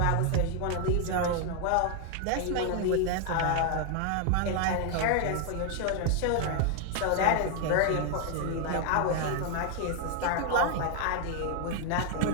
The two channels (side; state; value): both; different; correlation 0.00